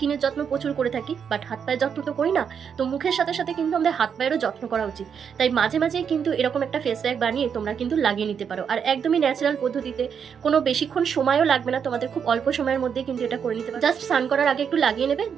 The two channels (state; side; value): quieter; left; 7.2 dB